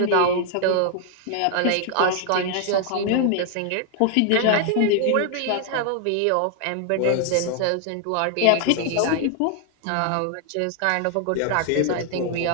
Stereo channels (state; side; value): different; both; correlation 0.00